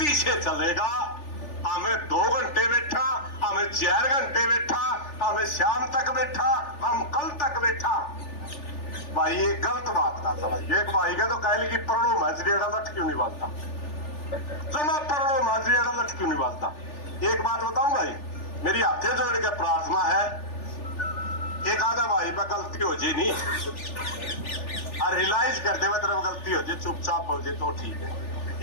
से चलेगा। हमें 2 घंटे बैठा, हमें 4 घंटे बैठा, हमें शाम तक बैठा, हम कल तक बैठा, भाई ये गलत बात ना समझिए। एक भाई का तो कह ली कि परणो माजरिया लट क्यों नहीं बांधता, जमा परणो माजरिया लट क्यों नहीं बांधता। एक बात बताऊं भाई, मेरी हाथे जोड़ के प्रार्थना है, एक आधा भाई पर गलती हो जाए नहीं और रियलाइज करते हुए तरफ गलती हो जाए, चुपचाप हो जाए तो ठीक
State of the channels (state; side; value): late; right; 3.4 ms